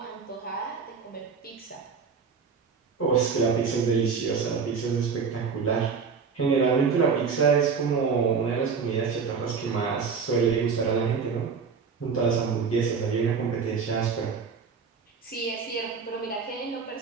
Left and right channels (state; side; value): quieter; left; 5.7 dB